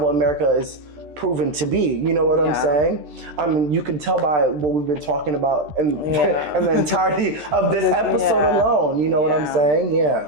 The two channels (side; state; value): left; late; 13 ms